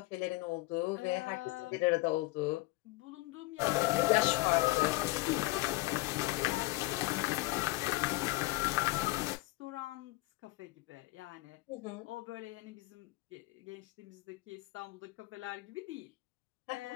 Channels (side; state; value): right; quieter; 21.3 dB